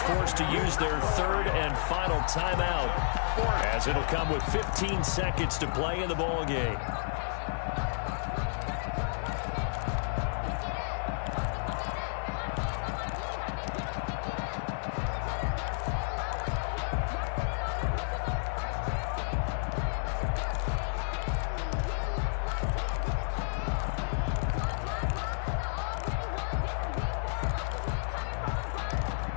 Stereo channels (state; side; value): silent; right; digital silence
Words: to use their 3rd and final timeout, as it'll come with 15 seconds to play in the ball game.